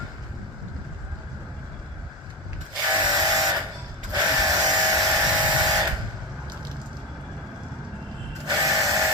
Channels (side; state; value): both; normal; correlation 0.16